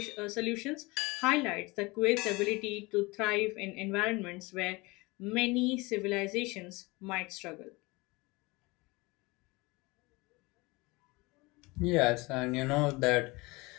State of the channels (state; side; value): quieter; right; 24.1 dB